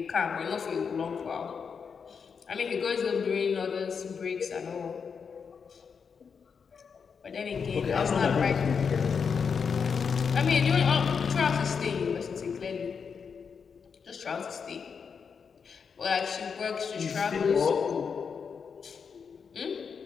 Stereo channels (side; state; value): right; quieter; 6.1 dB